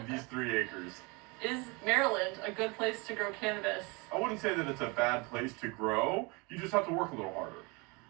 these 3 acres. Is Maryland a good place to grow cannabis? I wouldn't say that it's a bad place to grow. You just have to work a little harder.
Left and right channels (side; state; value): left; quieter; 28.0 dB